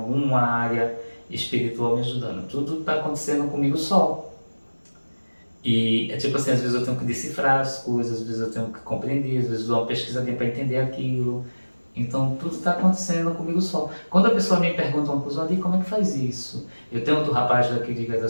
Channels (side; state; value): both; inverted; correlation -1.00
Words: área espiritual me ajudando. Tudo está acontecendo comigo só. E é tipo assim, às vezes eu tenho que decifrar as coisas, às vezes eu tenho que compreender, às vezes eu dou uma pesquisadinha para entender aquilo. Então tudo está acontecendo comigo só. Quando a pessoa me pergunta uma coisa, Adi, como é que faz isso? Eu tenho outro rapaz daqui de